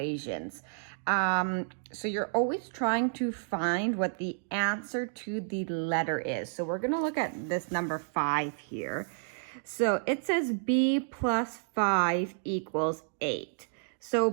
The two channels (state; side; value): silent; left; digital silence